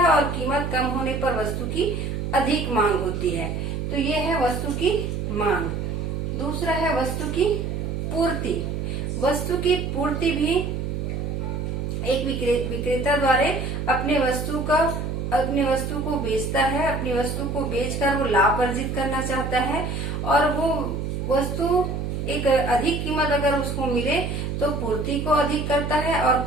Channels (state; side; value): noise; right; hum, 3 dB below the sound